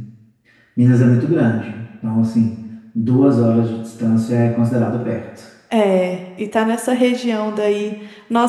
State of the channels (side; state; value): both; identical; correlation 1.00